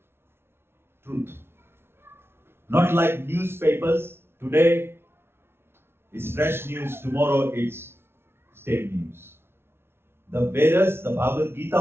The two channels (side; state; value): left; late; 0.12 ms